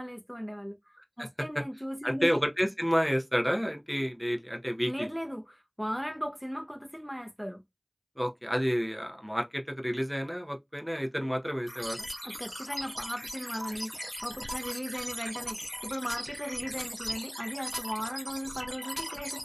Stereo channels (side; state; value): both; identical; correlation 1.00